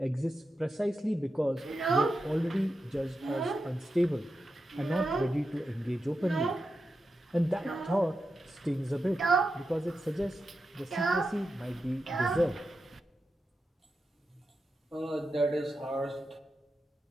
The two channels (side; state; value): both; normal; correlation 0.89